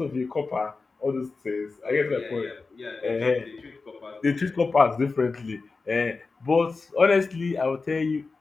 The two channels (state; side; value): quieter; right; 4.1 dB